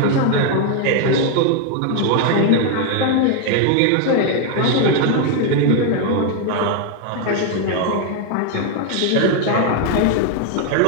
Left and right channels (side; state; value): both; different; correlation 0.01